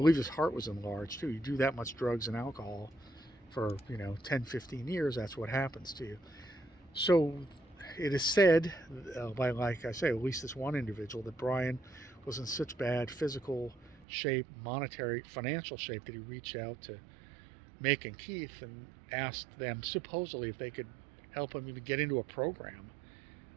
his heart was enlarged too. You do that much drugs and alcohol for 10, 15 years, that's what happens to you. So it is said by, like I say, at least this one individual, that Brian was in such bad physical shape, monetary, financial shape, that he reached out to Mick and Keith and asked them supposedly if they could help him even get into a program,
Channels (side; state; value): left; drops out; at 14.1 s